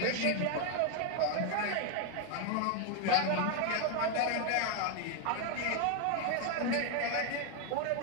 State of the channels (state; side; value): different; both; correlation 0.01